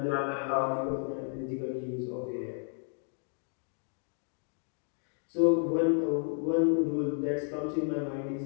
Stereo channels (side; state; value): right; silent; 56 dB below the other